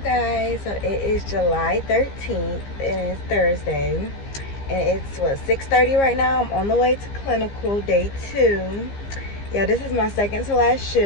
so it is July 13th and it's Thursday, and it's what, 6:30 right now. I'm on the way to clinical, day 2. Yeah, this is my second to last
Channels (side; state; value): right; late; 15 ms